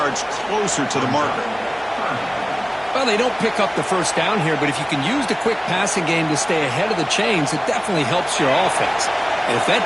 closer to the marker. Well, they don't pick up the first down here, but if you can use the quick passing game to stay ahead of the chains, it definitely helps your offense. And if that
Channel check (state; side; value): identical; both; correlation 1.00